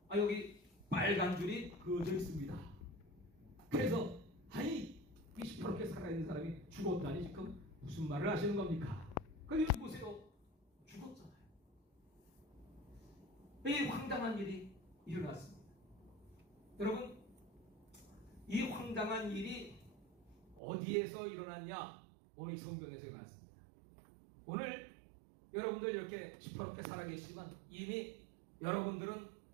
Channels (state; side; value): drops out; left; at 20.6 s